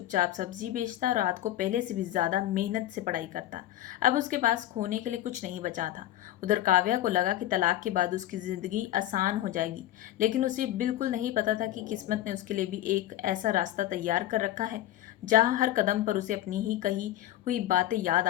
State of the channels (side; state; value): right; quieter; 13.6 dB